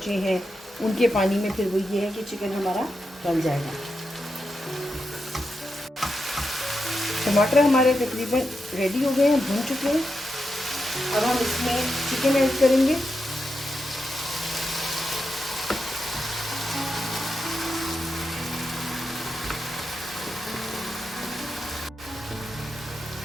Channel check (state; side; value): normal; both; correlation 0.87